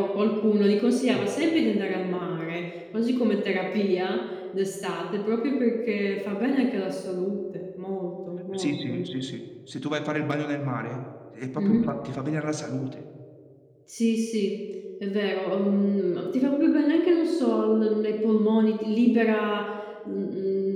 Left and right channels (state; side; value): identical; both; correlation 1.00